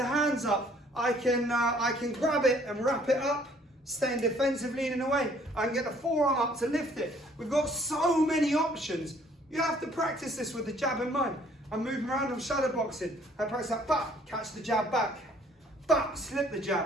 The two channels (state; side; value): normal; both; correlation 0.60